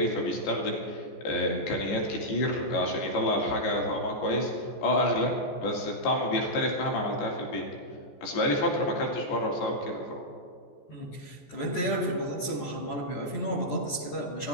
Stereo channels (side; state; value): right; late; 14 ms